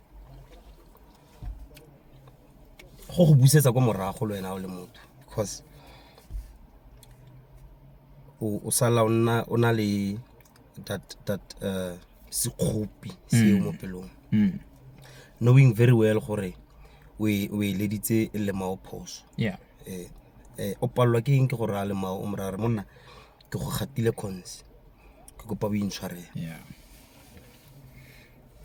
Go busetsa kwa morago le wena o le motho because o sala ona le that sekgopi se mo pelong. Knowing very well gore we leditse le mao phoso. Yeah. O palwa ke eng ke gore a le mao o morare monna ke go gatile cons ke kopa bo intshwarela.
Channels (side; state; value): both; identical; correlation 1.00